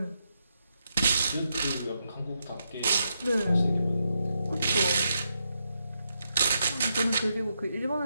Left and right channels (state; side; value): inverted; both; correlation -0.83